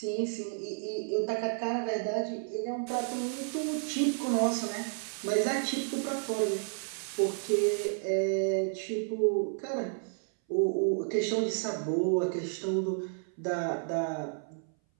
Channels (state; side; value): silent; left; 57 dB below the other